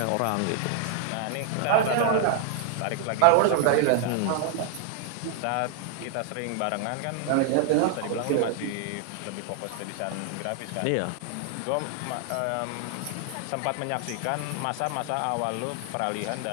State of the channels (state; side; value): different; both; correlation 0.00